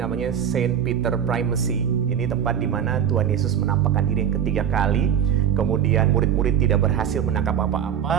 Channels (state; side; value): quieter; left; 8.9 dB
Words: Saint Peter Primacy. Ini tempat di mana Tuhan Yesus menampakkan diri yang ketiga kali. Kemudian murid-murid tidak berhasil menangkap